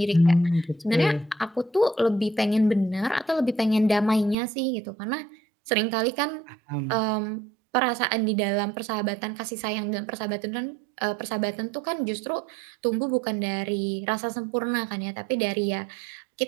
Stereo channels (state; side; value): drops out; left; at 4.4 s